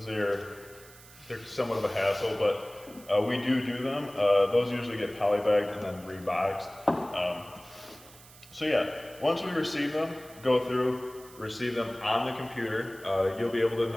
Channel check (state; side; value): noise; right; hiss, 21 dB below the sound